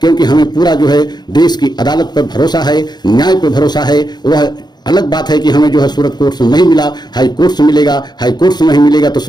हमें पूरा जो है देश की अदालत पर भरोसा है, न्याय पर भरोसा है। वह अलग बात है कि हमें जो है सूरत कोर्ट से नहीं मिला, हाई कोर्ट से मिलेगा, हाई कोर्ट से नहीं मिलेगा तो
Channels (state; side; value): late; right; 0.20 ms